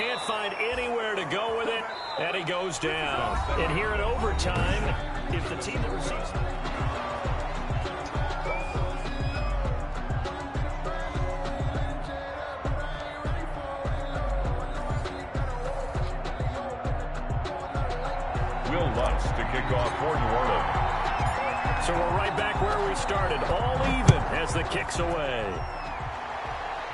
find anywhere to go with it, and he goes down. And here in overtime, if the team that receives... Will Lutz to kick off for New Orleans. So we're right back where we started, all even as the kick's away.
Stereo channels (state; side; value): identical; both; correlation 1.00